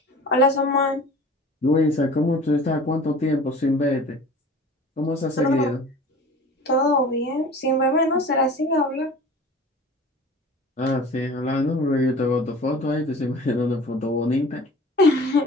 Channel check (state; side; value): normal; both; correlation 0.42